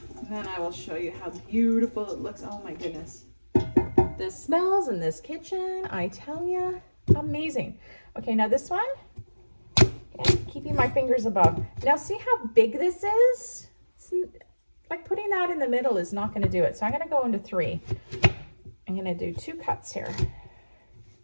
And then I will show you how beautiful it looks. Oh my goodness. The smells in this kitchen, I tell you, amazing. Okay, now this one, okay, keeping my fingers above. Now see how big this is? Like putting that in the middle is not going to do it. So I'm going to go into 3. I'm going to do 2 cuts here.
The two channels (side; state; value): both; inverted; correlation -1.00